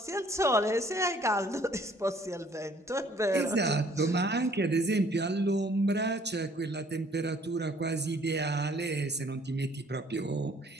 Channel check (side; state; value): both; normal; correlation 0.59